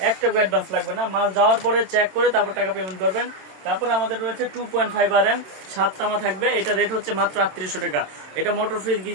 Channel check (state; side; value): late; left; 27 ms